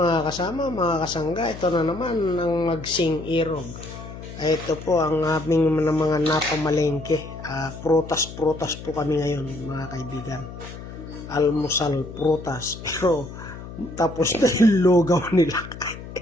kasama, mga kasangga. Ito na naman ang Magsing Irog. Ito po ang aming mga napamalengke. Prutas-prutas po kami ngayon mga kaibigan. Almusal prutas. Pero tapos na yung lugaw nila.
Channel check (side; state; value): left; noise; hum, 12 dB below the sound